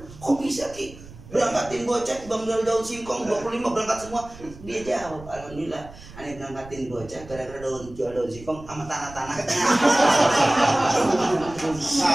kok bisa Ki? Berangkatin bocah, bang jual daun singkong 25 berangkat semua. Dia jawab, alhamdulillah. Aneh berangkatin bocah gara-gara jual daun singkong sama tanah-tanahnya.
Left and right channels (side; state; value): right; noise; rumble, 18 dB below the sound